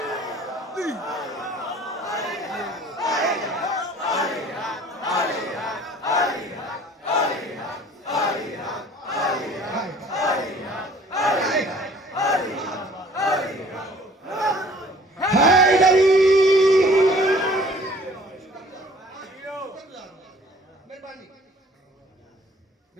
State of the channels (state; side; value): normal; both; correlation 0.53